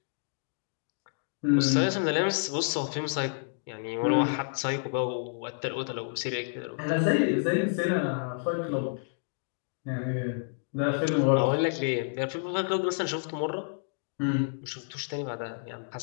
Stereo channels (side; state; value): right; silent; digital silence